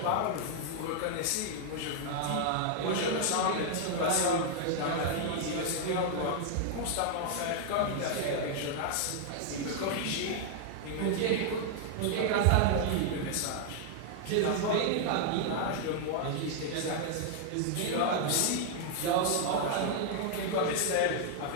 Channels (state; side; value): different; both; correlation 0.00